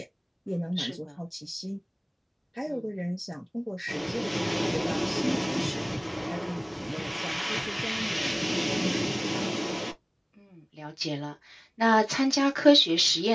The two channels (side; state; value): both; identical; correlation 1.00